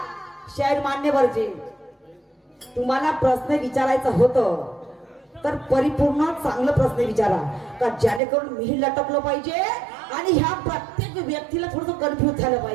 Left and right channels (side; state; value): left; drops out; at 8.2 s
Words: शायर मान्यवरजी तुम्हाला प्रश्न विचारायचा होतं तर परिपूर्ण चांगलं प्रश्न विचारा, का जेणेकरून मी लटकलो पाहिजे आणि ह्या प्रत्येक व्यक्तीला थोडस कन्फ्युज झालं